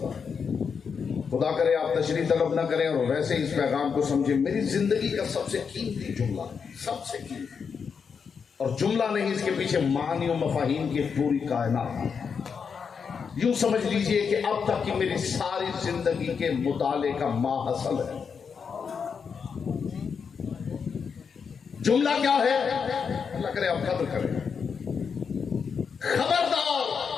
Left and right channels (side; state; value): right; quieter; 6.2 dB